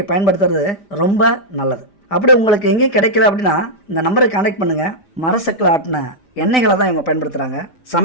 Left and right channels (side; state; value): right; late; 5.1 ms